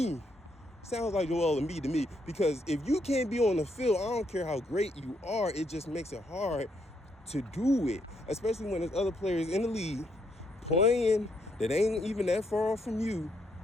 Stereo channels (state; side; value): normal; both; correlation 0.75